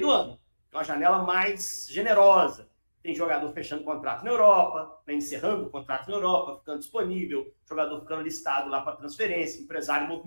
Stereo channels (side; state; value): both; inverted; correlation -1.00